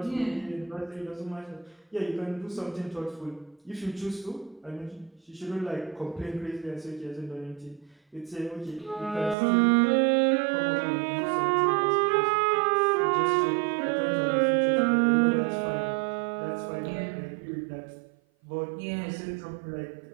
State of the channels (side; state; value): left; drops out; at 9.3 s